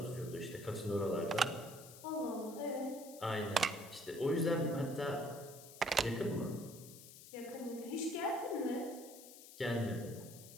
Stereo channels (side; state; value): left; noise; hiss, 16 dB below the sound